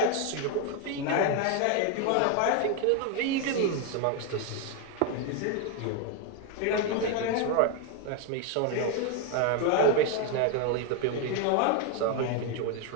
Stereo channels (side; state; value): both; different; correlation 0.01